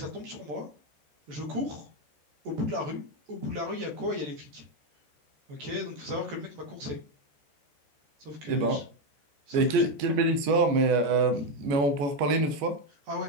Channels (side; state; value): left; late; 14 ms